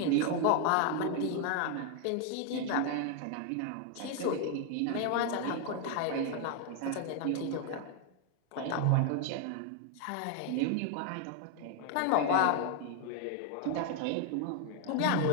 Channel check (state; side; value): different; both; correlation 0.00